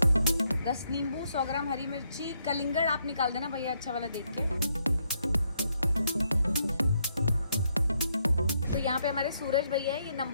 10 नींबू, 100 ग्राम हरी मिर्ची, कलिंगड़ आप निकाल देना भैया अच्छा वाला देख के। तो यहाँ पे हमारे सूरज भैया है, ये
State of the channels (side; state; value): both; inverted; correlation -0.75